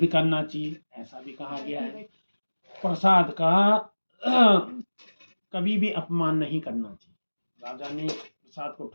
करना चाहिए, ऐसा भी कहा गया है। प्रसाद का कभी भी अपमान नहीं करना चाहिए। राजा ने प्रसाद को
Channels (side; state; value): both; inverted; correlation -1.00